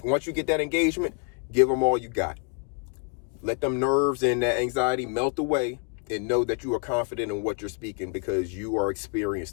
once you get that engagement, give them all you got. Let them nerves and that anxiety melt away and know that you are confident in what you're speaking because you are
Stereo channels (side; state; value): right; quieter; 34.7 dB